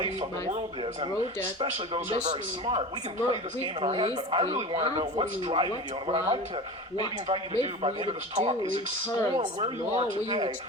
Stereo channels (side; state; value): both; normal; correlation 0.31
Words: of the world is, and especially those who are very smart. We can play this game in our head, but I really want to know what's driving you. And what I'd like to maybe invite you to do by the end of this talk is explore where you are today